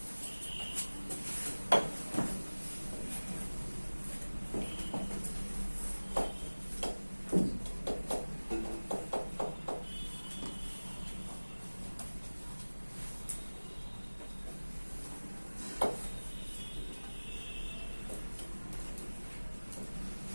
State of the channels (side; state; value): both; inverted; correlation -1.00